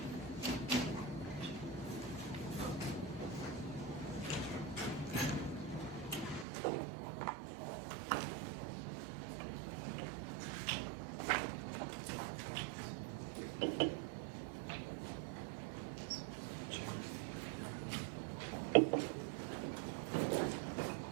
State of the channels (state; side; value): drops out; left; at 6.5 s